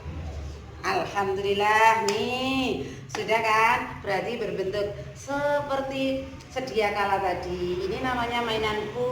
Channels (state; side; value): identical; both; correlation 1.00